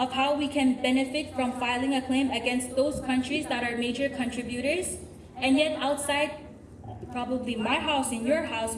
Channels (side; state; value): both; identical; correlation 1.00